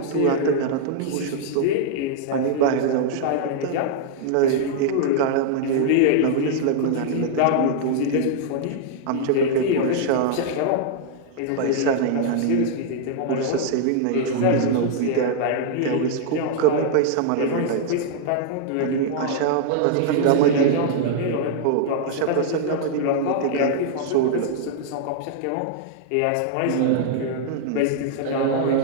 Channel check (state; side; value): different; both; correlation -0.01